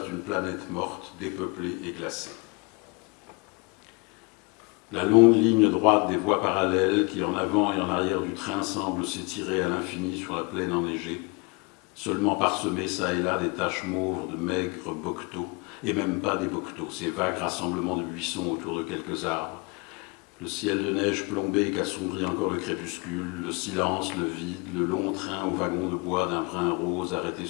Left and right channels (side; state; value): right; quieter; 29.2 dB